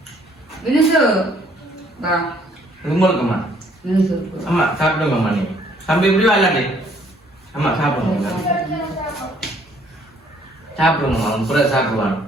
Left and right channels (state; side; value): normal; both; correlation 0.63